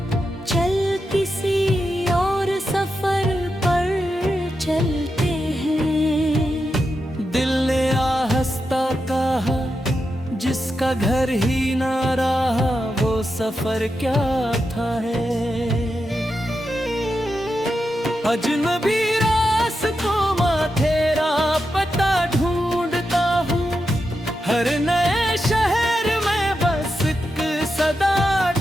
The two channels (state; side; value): normal; both; correlation 0.88